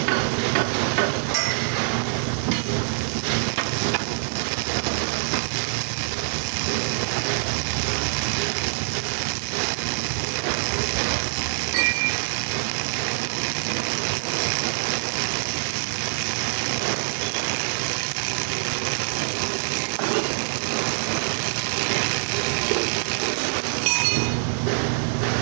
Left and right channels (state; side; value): silent; left; 62 dB below the other